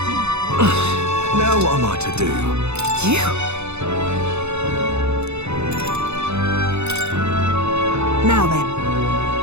Now what am I to do? You? Now then.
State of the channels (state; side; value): late; left; 0.81 ms